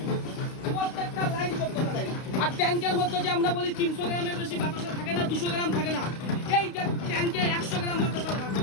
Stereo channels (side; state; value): right; late; 32 ms